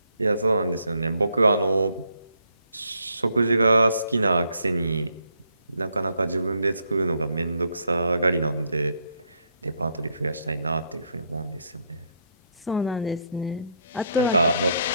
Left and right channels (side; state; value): both; inverted; correlation -0.73